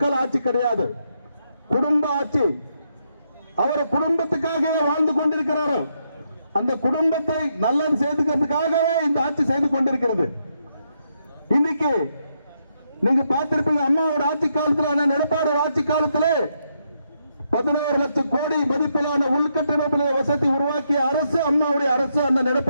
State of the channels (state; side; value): inverted; both; correlation -0.79